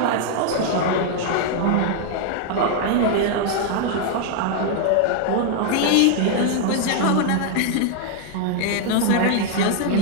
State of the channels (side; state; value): both; different; correlation 0.00